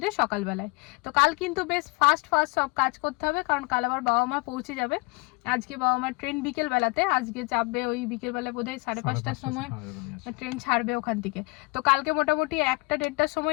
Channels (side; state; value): right; quieter; 27.8 dB